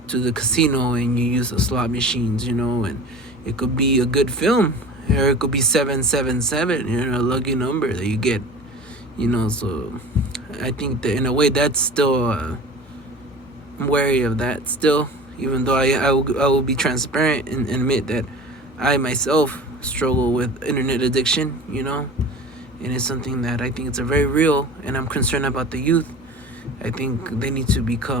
the casino and you use the slot machines. And it could be a good film or it could be 777. A lucky number that you get. So I think that in a way that's still I'm wary of that still, even though I will be transparent and admit that I myself struggle with internet addiction, and it's something that I think it's a very real, and I'm concerned about the youth. I think they need to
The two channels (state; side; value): normal; both; correlation 0.38